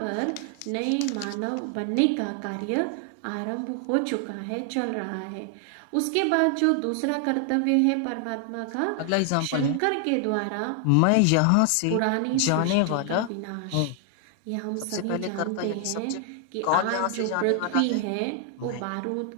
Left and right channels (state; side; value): different; both; correlation 0.00